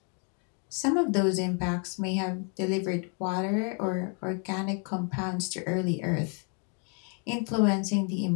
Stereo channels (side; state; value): right; quieter; 39.1 dB